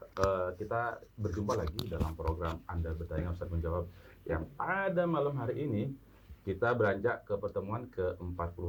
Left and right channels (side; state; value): both; identical; correlation 1.00